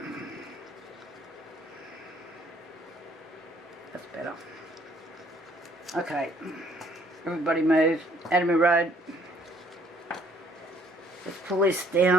That's better. Okay, everybody move. Out of my road. Let's pull this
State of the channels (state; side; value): normal; both; correlation 0.62